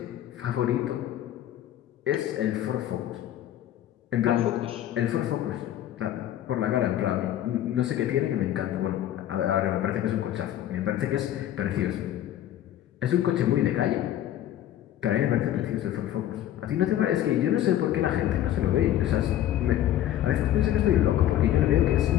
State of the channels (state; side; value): quieter; right; 12.2 dB